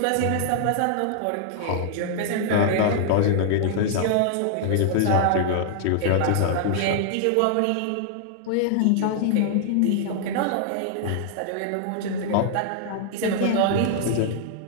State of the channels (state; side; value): different; both; correlation -0.01